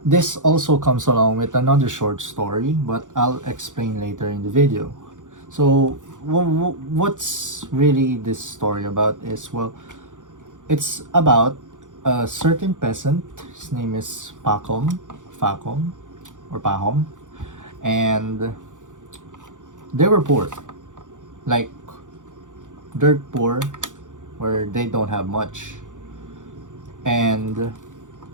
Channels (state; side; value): late; left; 0.87 ms